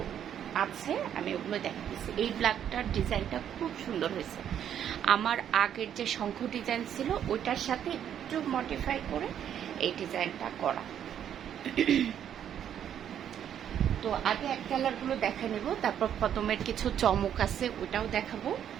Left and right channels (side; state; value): left; quieter; 9.6 dB